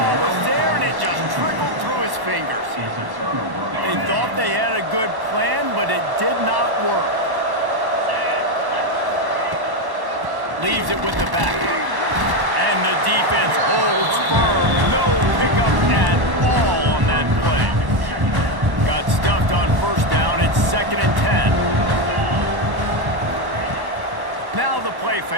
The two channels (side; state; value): left; late; 1.1 ms